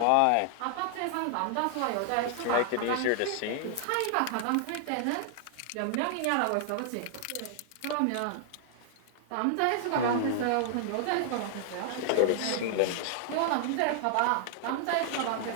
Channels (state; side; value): different; both; correlation -0.01